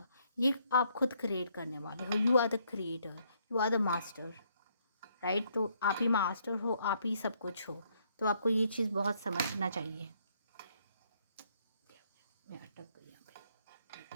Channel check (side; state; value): both; inverted; correlation -0.71